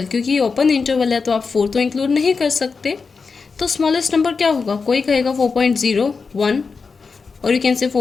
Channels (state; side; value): quieter; right; 4.9 dB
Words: क्योंकि ये ओपन इंटरवल है तो आप 4 तो इंक्लूड नहीं कर सकते, तो स्मॉलेस्ट नंबर क्या होगा? कोई कहेगा 4.01 और यू कैन से